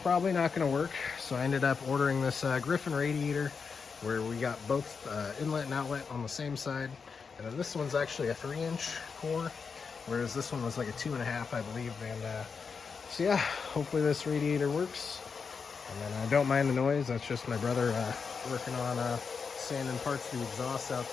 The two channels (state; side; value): quieter; right; 5.5 dB